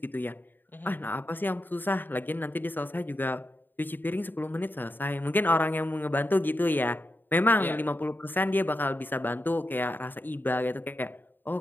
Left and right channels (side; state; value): right; late; 0.092 ms